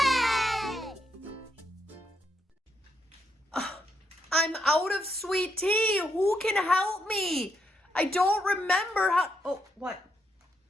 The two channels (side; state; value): both; normal; correlation 0.79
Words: I'm out of sweet tea. Who can help me? I don't remember how. Oh, what?